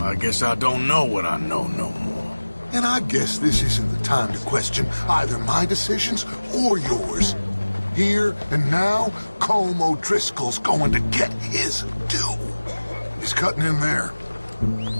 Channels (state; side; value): inverted; both; correlation -1.00